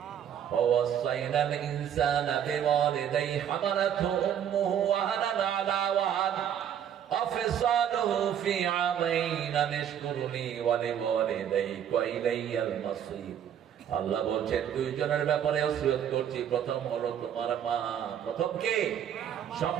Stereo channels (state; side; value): quieter; left; 9.3 dB